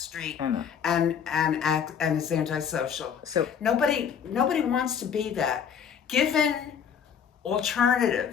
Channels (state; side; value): quieter; right; 7.6 dB